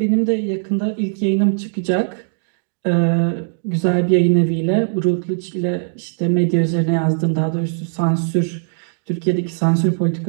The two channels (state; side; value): silent; left; digital silence